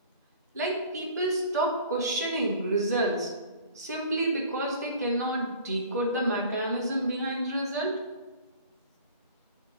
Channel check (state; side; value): inverted; both; correlation -0.46